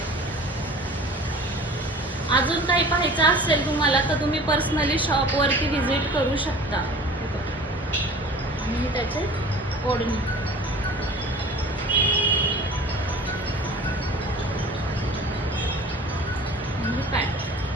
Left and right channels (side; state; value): both; normal; correlation 0.43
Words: अजून काही पाहायचं असेल तुम्हाला तर तुम्ही पर्सनली शॉपवरती व्हिजिट करू शकता. आणि त्याचे ओढणी